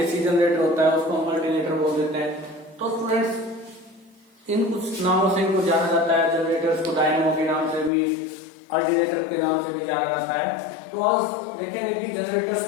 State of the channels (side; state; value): right; drops out; at 7.9 s